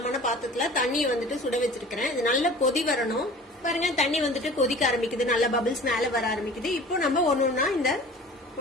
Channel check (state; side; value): normal; both; correlation 0.43